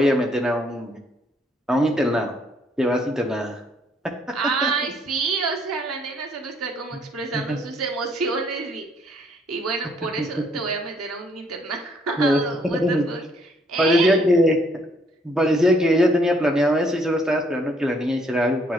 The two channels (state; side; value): normal; both; correlation 0.67